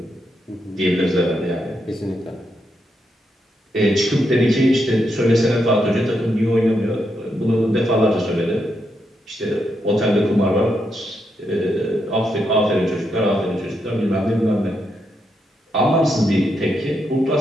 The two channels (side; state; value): both; normal; correlation 0.81